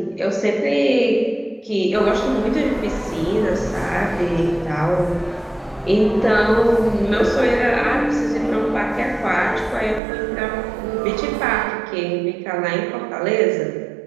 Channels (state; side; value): drops out; left; at 10.0 s